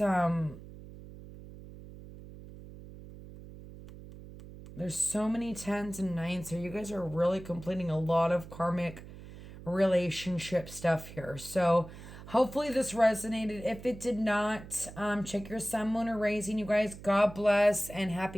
there's so many tens and nines here. You guys are really completing a lot of karmic relationship stuff here. So hopefully this resonated. If it did not, check your sun, moon, or raising. You guys, God bless and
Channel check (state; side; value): noise; right; hum, 15 dB below the sound